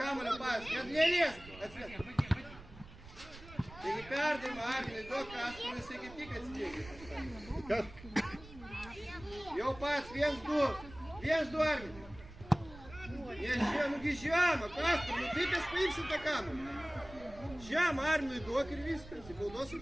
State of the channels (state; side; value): noise; right; rumble, 17 dB below the sound